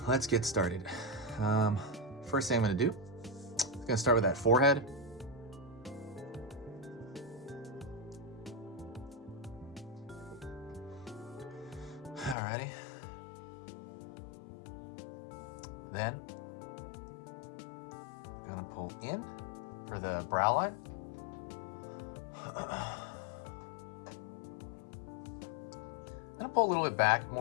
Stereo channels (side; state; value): right; drops out; at 12.4 s